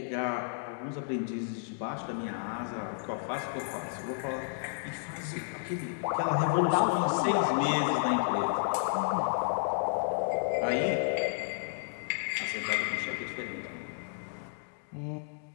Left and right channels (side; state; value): right; silent; digital silence